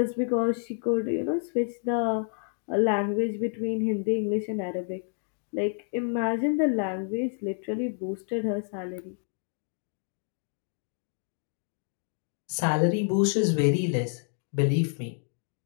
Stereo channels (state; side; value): silent; right; digital silence